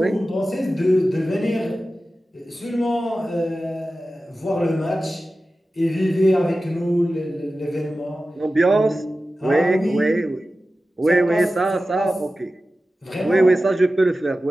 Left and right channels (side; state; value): both; normal; correlation 0.94